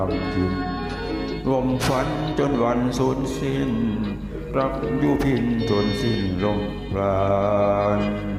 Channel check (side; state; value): both; identical; correlation 1.00